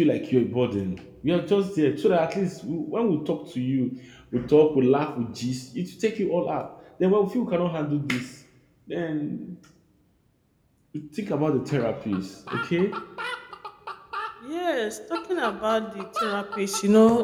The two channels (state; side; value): identical; both; correlation 1.00